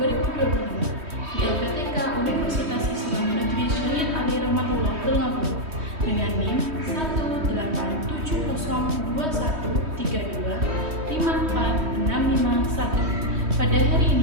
di LPTK Universitas Islam Negeri Syahid Ali Rahmatullah Tulungagung dengan NIM 1870213254651. Pada hari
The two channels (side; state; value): left; late; 3.2 ms